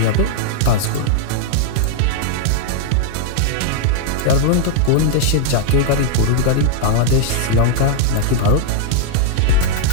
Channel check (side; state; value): both; different; correlation -0.01